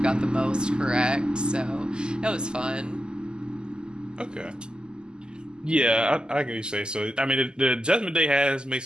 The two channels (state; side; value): late; left; 0.046 ms